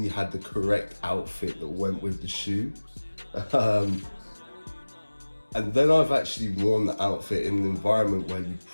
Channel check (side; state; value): both; inverted; correlation -1.00